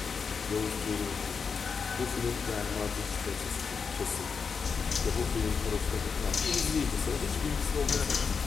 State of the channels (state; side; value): quieter; right; 5.7 dB